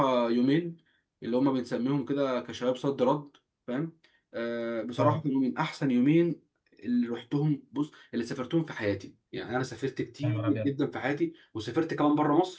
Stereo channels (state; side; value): identical; both; correlation 1.00